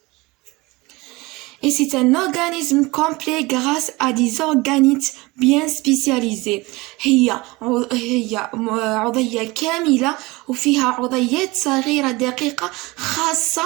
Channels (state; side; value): quieter; left; 22.7 dB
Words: Et c'est un organisme complet grâce à des organites bien spécialisés. هي عضية كاملة وفيها عضيات صغيرة دقيقة